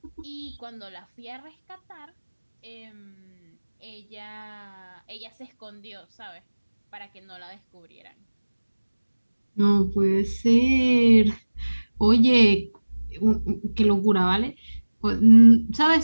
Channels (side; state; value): both; inverted; correlation -1.00